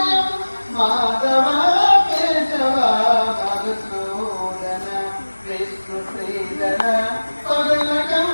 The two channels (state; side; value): inverted; both; correlation -1.00